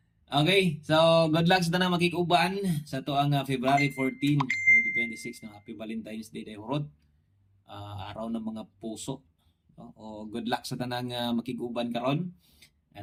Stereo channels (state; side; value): identical; both; correlation 1.00